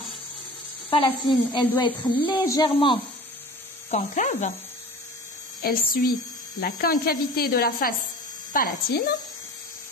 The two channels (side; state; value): both; normal; correlation 0.40